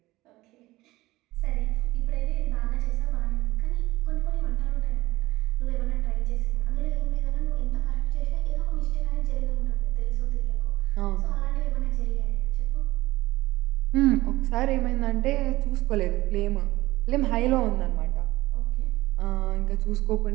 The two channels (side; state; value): left; quieter; 18.5 dB